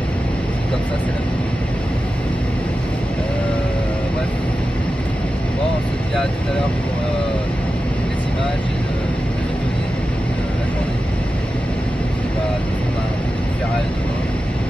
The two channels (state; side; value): normal; both; correlation 0.92